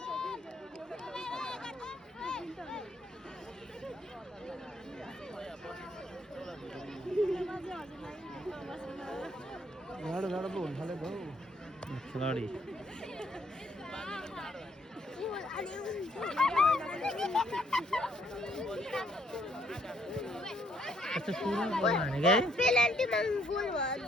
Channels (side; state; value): both; normal; correlation 0.69